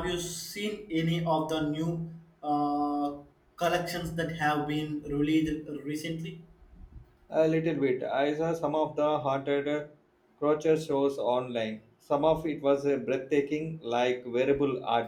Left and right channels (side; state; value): both; identical; correlation 1.00